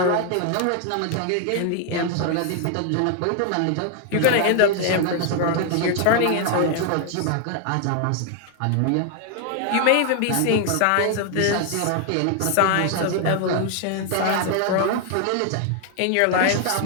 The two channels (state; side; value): different; both; correlation 0.00